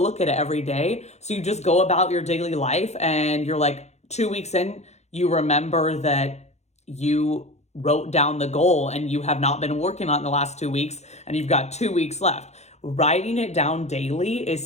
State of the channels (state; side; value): late; right; 0.32 ms